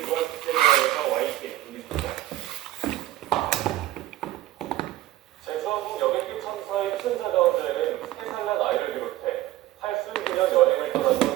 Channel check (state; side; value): quieter; left; 15.1 dB